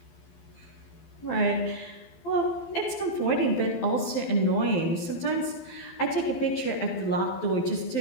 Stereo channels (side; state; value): right; late; 12 ms